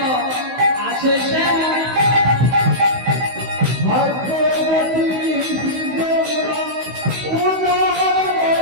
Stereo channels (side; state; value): left; late; 16 ms